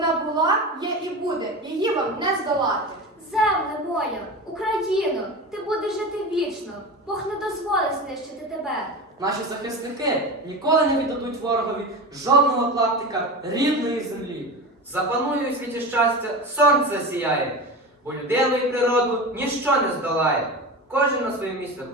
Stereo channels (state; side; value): normal; both; correlation 0.27